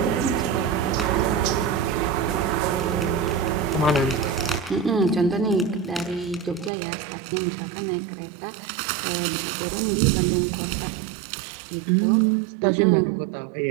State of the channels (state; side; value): drops out; left; at 6.7 s